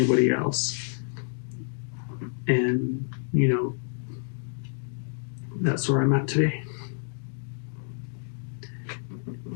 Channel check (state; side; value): silent; right; 59 dB below the other